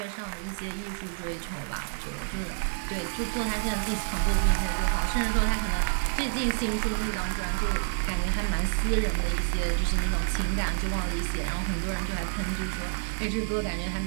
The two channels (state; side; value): silent; left; digital silence